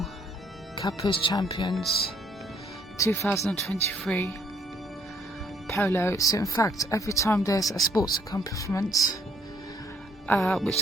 Kappa's Champions, 2023, Polo. So in fact, every time there's a sports accomplishment which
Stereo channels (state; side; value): normal; both; correlation 0.66